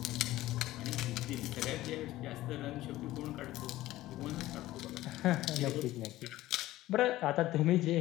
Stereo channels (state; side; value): quieter; right; 16.1 dB